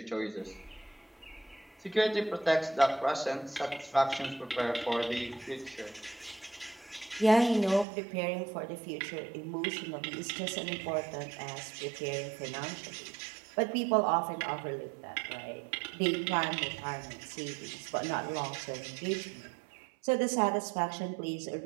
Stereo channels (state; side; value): drops out; left; at 7.9 s